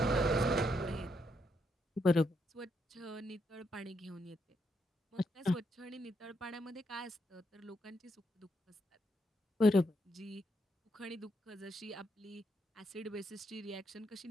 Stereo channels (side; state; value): both; normal; correlation 0.78